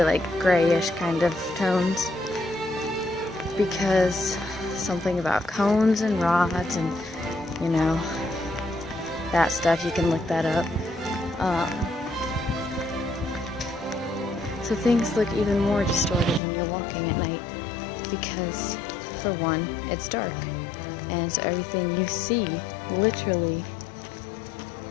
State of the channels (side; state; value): right; drops out; at 16.4 s